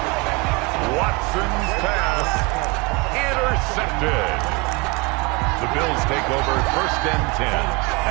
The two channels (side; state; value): left; quieter; 26.8 dB